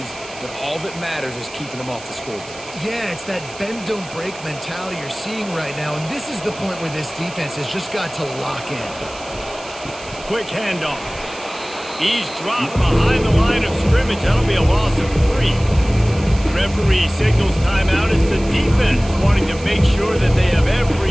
but all that matters is keeping them off the scoreboard. Yeah, it's that bend, don't break mentality you're seeing right now, and this is the point where this defense has just got to lock in. Quick handoff. He's dropped behind the line of scrimmage. That'll be a loss of 3. Referee signals timeout. It's the defense wanting to make sure that they have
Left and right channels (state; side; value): noise; right; hiss, 17 dB below the sound